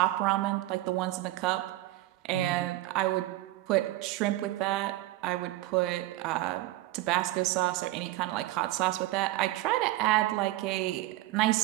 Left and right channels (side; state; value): left; quieter; 16.8 dB